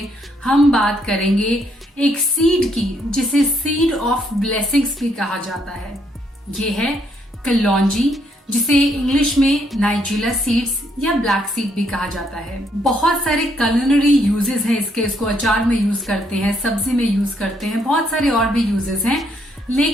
हम बात करेंगे एक सीड की जिसे सीड ऑफ ब्लेसिंग्स भी कहा जाता है। ये है कलौंजी, जिसे इंग्लिश में नाइजीला सीड्स या ब्लैक सीड भी कहा जाता है। बहुत सारे culinary यूजेस हैं इसके। इसको अचार में यूज करते हैं, सब्जी में यूज करते हैं, बहुत सारे और भी यूजेस हैं,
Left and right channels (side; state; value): both; normal; correlation 0.72